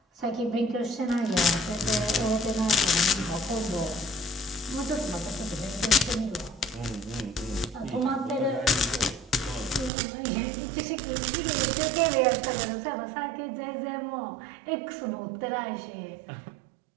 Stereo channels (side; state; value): left; drops out; at 9.9 s